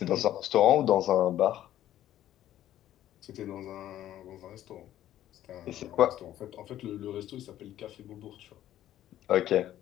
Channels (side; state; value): right; quieter; 12.6 dB